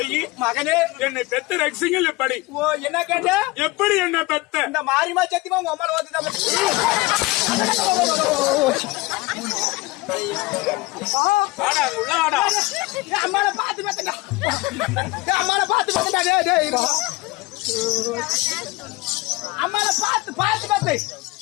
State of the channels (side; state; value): right; quieter; 21.7 dB